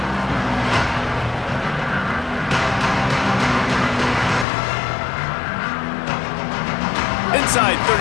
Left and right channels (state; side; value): drops out; right; at 4.5 s